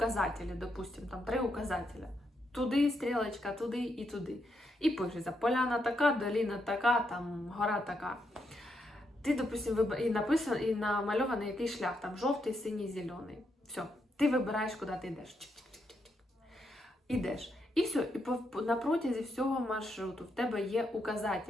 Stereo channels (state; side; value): normal; both; correlation 0.80